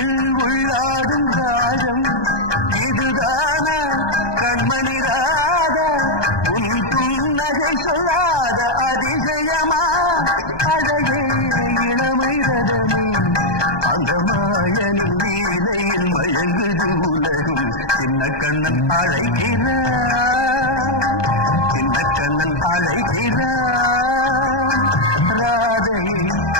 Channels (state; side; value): late; right; 1.2 ms